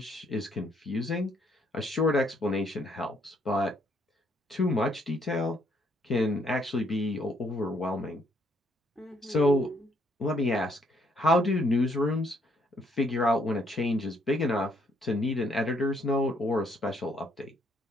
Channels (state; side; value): normal; both; correlation 0.69